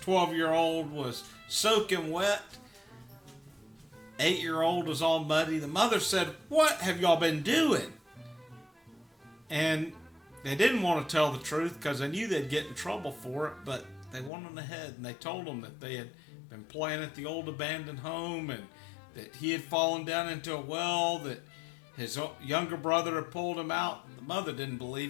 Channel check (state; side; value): drops out; right; at 14.3 s